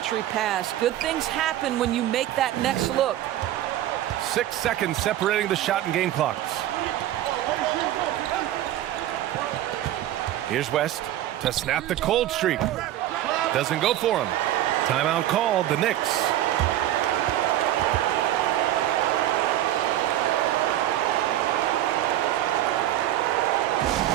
pass. Good things happen when you make that next look. 6 seconds separating the shot and game clocks. Here's West to snap the cold streak. Doesn't go for him. Timeout called, the Knicks.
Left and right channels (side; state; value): left; quieter; 13.2 dB